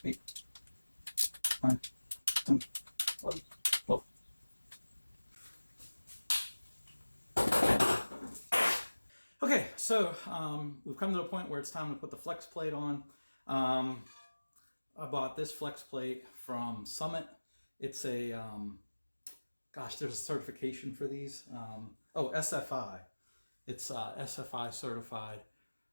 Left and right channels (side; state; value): both; inverted; correlation -1.00